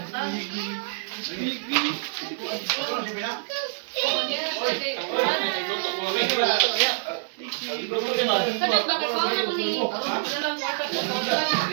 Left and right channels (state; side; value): silent; left; 61 dB below the other